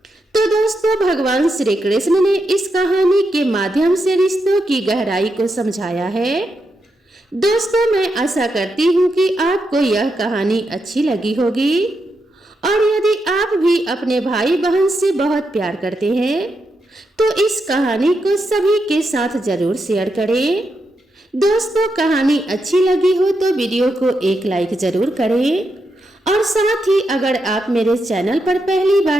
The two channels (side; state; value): both; normal; correlation 0.84